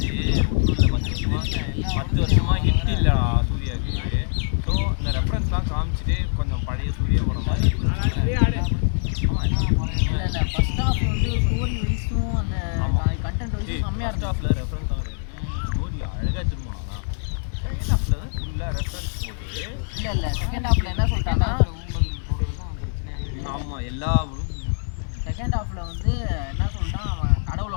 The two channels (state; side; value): silent; right; digital silence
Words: இல்லை, 10 வருஷமாக ஹிட் இல்லைடா சூர்யாவுக்கு. ஸோ இந்த ரெஃபரன்ஸ்லாம் காமிச்சிட்டு கொஞ்சம் பழைய சூர்யா படம் மாதிரி இல்லை ஃபர்ஸ்ட் ஹாஃப் வந்து ஸ்டோரி வைஸும் அந்த கண்டென்ட் வைஸும் செம்மையாக ஃபர்ஸ்ட் ஹாஃபில் ரெஃபரன்ஸ் தான் கிடையாது. ஸ்டோரி அழகாக திரும்பினா செகண்ட் ஹாஃபில் தான் ஃபுல்லாக ரெஃபரன்ஸ் போட்டு. இல்லை செகண்ட் ஹாஃபில் என்ன சொல்லிட்டாங்கன்னா ஆமாம் எல்லா செகண்ட் ஹாஃபில் வந்து என்ன சொல்லிட்டான், அவன்